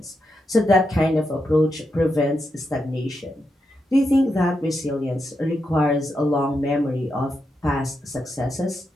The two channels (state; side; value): normal; both; correlation 0.85